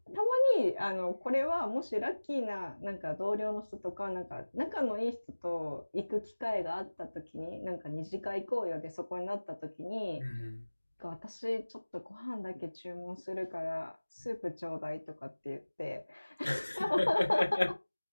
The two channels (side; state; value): both; inverted; correlation -1.00